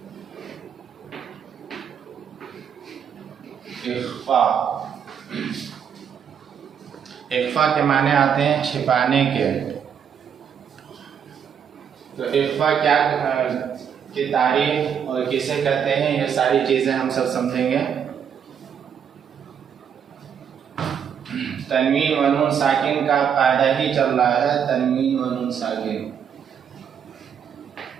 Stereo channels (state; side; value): quieter; left; 7.9 dB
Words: इख्फा, इख्फा के माने आते हैं छिपाने के। तो इख्फा क्या की तारीफ और किसे कहते हैं, ये सारी चीजें हम सब समझेंगे। तनवीन व नून साकिन का कायदा ही चल रहा है, तनवीन व नून साकिन।